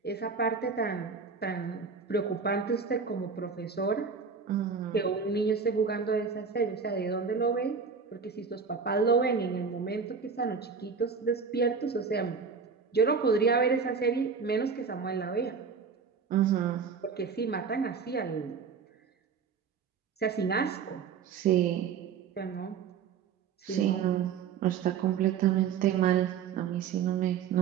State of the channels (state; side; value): quieter; left; 5.9 dB